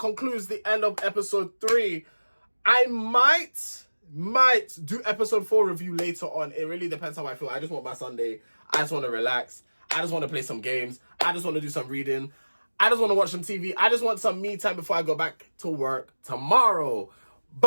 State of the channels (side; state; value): both; inverted; correlation -1.00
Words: the end of episode 3. I might do episode 4 review later on. It really depends how I feel. I just want my Sunday. I just want to relax. I just want to play some games. I just want to do some reading. I just want to watch some TV. I just want some me time before I go back to work tomorrow.